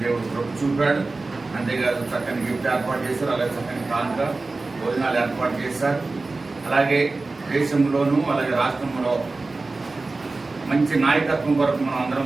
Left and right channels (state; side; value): quieter; left; 3.5 dB